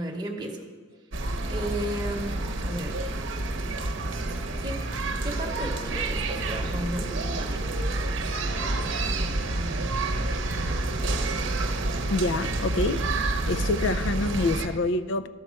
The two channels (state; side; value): normal; both; correlation 0.55